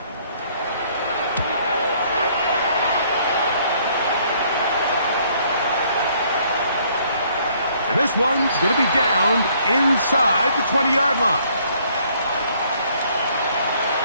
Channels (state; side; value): inverted; both; correlation -0.63